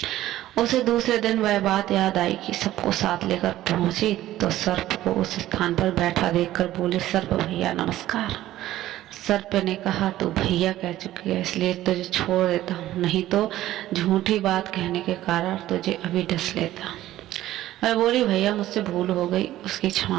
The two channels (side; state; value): left; quieter; 14.4 dB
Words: उसे दूसरे दिन वह बात याद आई कि सबको साथ लेकर पहुंची तो सर्प को उस स्थान पर बैठा देखकर बोले, सर्प भैया नमस्कार। सर्प ने कहा, तू भैया कह चुकी है, इसलिए तुझे छोड़ देता हूँ, नहीं तो झूठी बात कहने के कारण तुझे अभी डस लेता। मैं बोली, भैया मुझसे भूल हो गई, उसकी